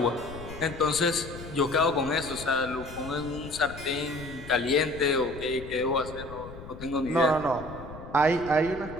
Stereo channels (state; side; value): noise; left; rumble, 14 dB below the sound